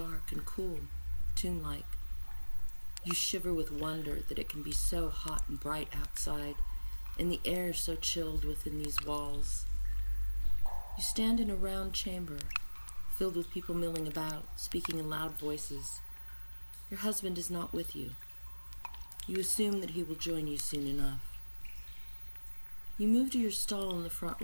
and cool, tomb-like. You shiver with wonder that it can be so hot and bright outside, and the air so chilled within these walls. You stand in a round chamber, filled with people milling about, speaking in loud voices. Your husband is not with you. You assume that he will join you soon enough. You move to your stall in the front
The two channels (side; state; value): both; inverted; correlation -1.00